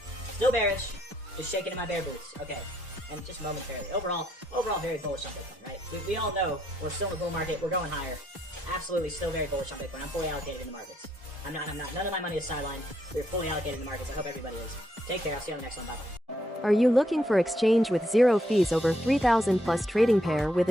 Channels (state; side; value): normal; both; correlation 0.75